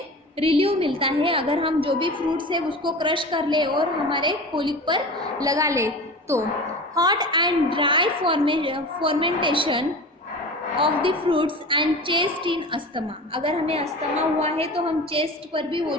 रिलीव मिलता है अगर हम जो भी फ्रूट्स है उसको क्रश कर ले और हमारे कोलिक पर लगा ले तो। Hot and dry fermentation of the fruits and chest in asthma, अगर हमें अस्थमा हुआ है तो हम चेस्ट पर भी वो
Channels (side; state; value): both; normal; correlation 0.33